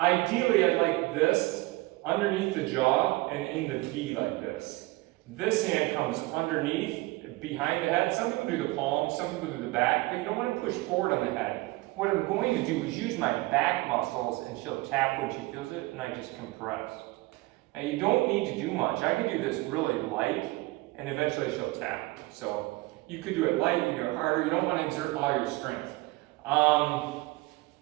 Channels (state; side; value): quieter; left; 21.2 dB